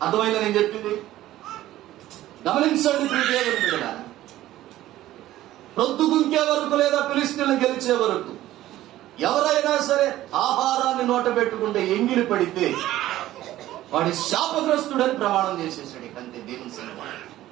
అర్థమైందా నేను చెప్పింది? గమనించండి దేవుని బిడ్డలారా, ప్రొద్దుగుంకే వరకు లేదా ఫిలిష్తీయులను గెలిచే వరకు ఎవరైనా సరే ఆహారాన్ని నోట పెట్టుకుంటే ఎంగిలి పడితే వాడి శాపగ్రస్తుడని ప్రమాణం చేసేసాడు. అంతే, దేవుని సన్నిధిలో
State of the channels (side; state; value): left; quieter; 14.6 dB